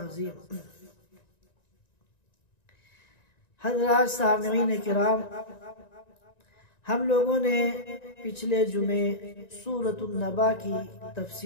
حضرات سامعین کرام، ہم لوگوں نے پچھلے جمعے سورۃ النبا کی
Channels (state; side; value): late; right; 1.9 ms